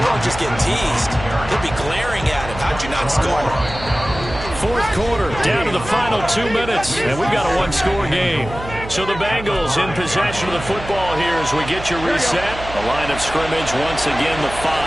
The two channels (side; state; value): right; noise; hum, 11 dB below the sound